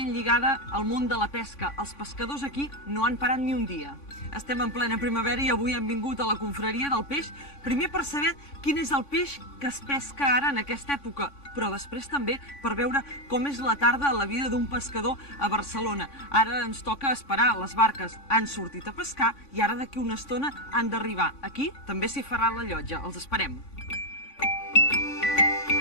lligada al món de la pesca. Els pescadors aquí no han parat ni un dia. Estem en plena primavera i avui hem vingut a la confraria del peix, primer per saber quin és el peix que es pesca ara en aquesta època, però després també per veure com és la tarda a la vida d'un pescador a Barcelona. Ara ens toca esperar, les barques han sortit a pescar i ara d'aquí una estona han d'arribar. Aquí també s'hi farà la llotja, els esperem.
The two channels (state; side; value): late; right; 3.5 ms